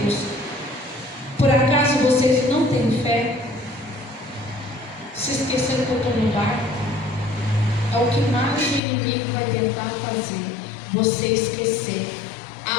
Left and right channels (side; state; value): right; drops out; at 8.8 s